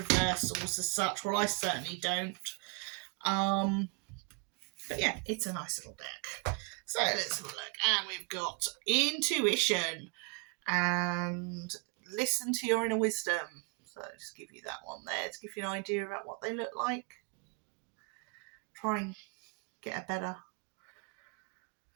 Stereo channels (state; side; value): quieter; left; 32.6 dB